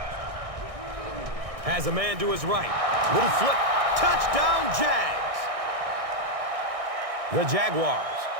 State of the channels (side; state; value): left; late; 1.6 ms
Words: Has a man to his right. Little flip. Touchdown, Jags. The Jaguars